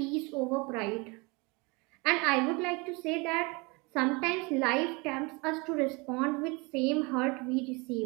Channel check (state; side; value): quieter; left; 27.7 dB